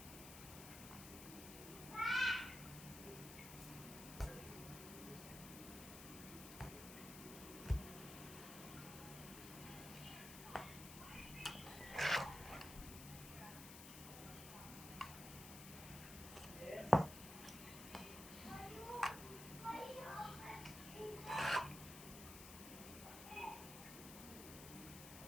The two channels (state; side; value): noise; left; hiss, 11 dB below the sound